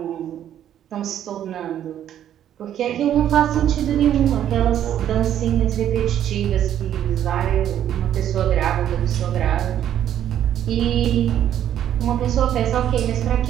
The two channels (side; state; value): left; quieter; 10.7 dB